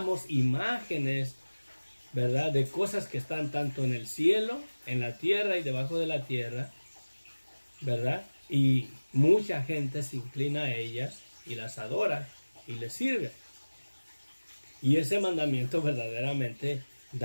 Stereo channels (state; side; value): inverted; both; correlation -1.00